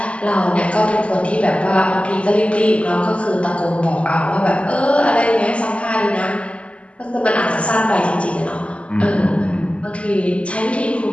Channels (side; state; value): right; late; 0.060 ms